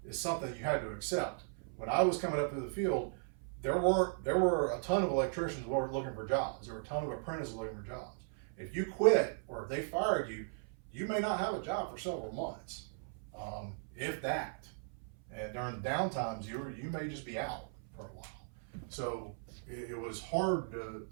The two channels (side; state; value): left; silent; 53 dB below the other